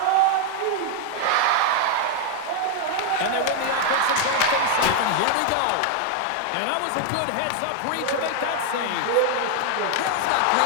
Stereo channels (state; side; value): different; both; correlation 0.00